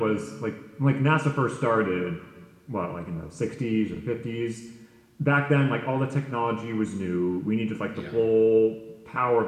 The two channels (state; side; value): identical; both; correlation 1.00